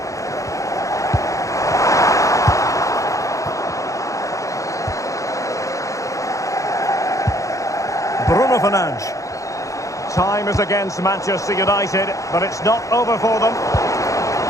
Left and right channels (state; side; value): late; right; 0.16 ms